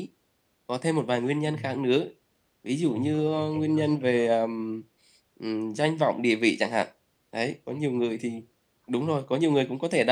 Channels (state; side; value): identical; both; correlation 1.00